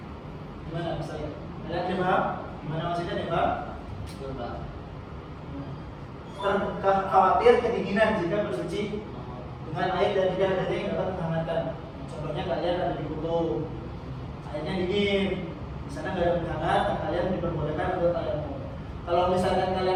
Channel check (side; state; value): both; identical; correlation 1.00